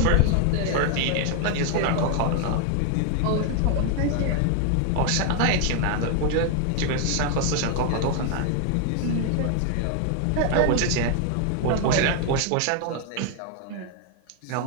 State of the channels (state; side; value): different; both; correlation 0.00